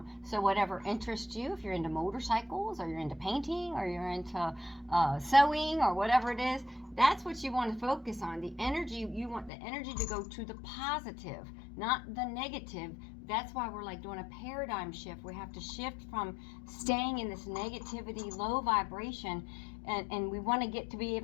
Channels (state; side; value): drops out; right; at 9.5 s